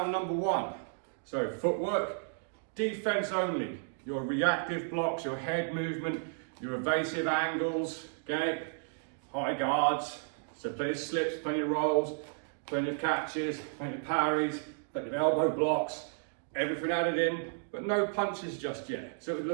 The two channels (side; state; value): left; silent; digital silence